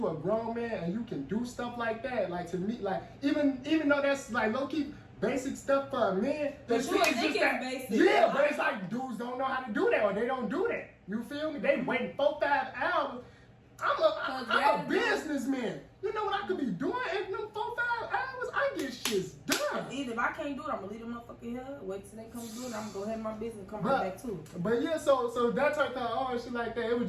a grown man and you can do stuff like that, to me, even though that's low-key basic stuff for a man, but you think it's basic. Yeah, but it's like dudes don't know how to do that, or they don't do that. You feel me? They waiting 4-5 hours. I'm a businessman. You know what I could be doing in them 4-5 hours? I get shit done. Either if I can't do it, I'm gonna leave them motherfucker here, wait till they come do it, I'm gonna go ahead my business and come right back to it. But yeah, so that type of shit like that, it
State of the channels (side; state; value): both; identical; correlation 1.00